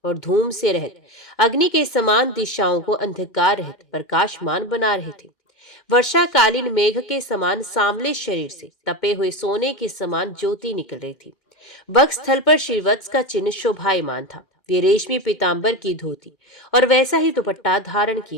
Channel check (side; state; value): right; late; 2.2 ms